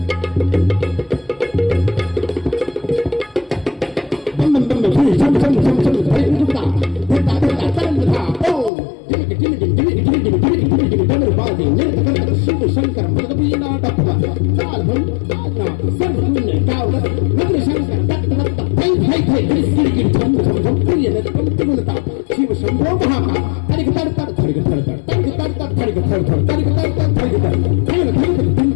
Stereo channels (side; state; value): right; drops out; at 8.7 s